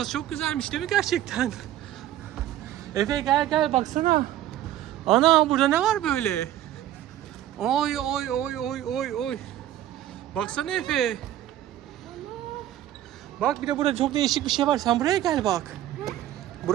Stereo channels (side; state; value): left; quieter; 12.6 dB